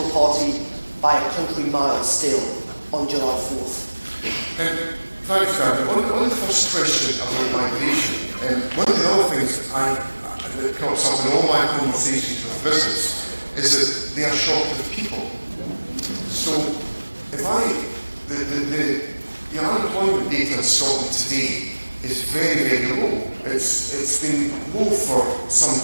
party by a country mile still on July 4th? Thanks, David. On the first question about migration, one of the other things that comes up in all my conversations with business is that they are short of people. So, the unemployment data in Scotland today is very, very low. It's been low for some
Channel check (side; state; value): both; inverted; correlation -1.00